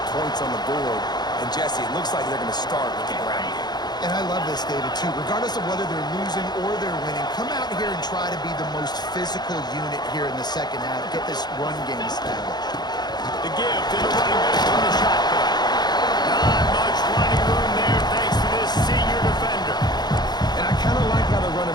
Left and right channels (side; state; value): right; late; 0.20 ms